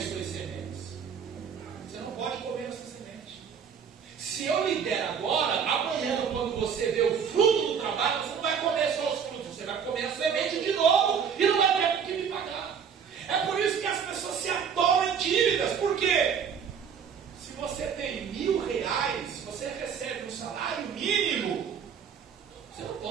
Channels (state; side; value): quieter; left; 7.2 dB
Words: suas sementes. Você não pode comer essa semente. Se eu lhe der agora, amanhã, quando você vê o fruto do trabalho, você não vai comer só os frutos, você vai comer a semente de novo e não vai ter com que me pagar. É por isso que as pessoas se atolam em dívidas. Por quê? Se você tem R$1.000, você recebe um salário mínimo. Você não